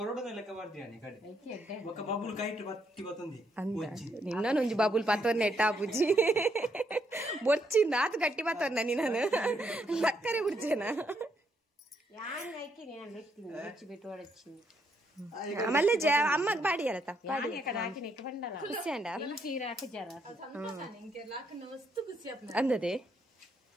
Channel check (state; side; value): normal; both; correlation 0.75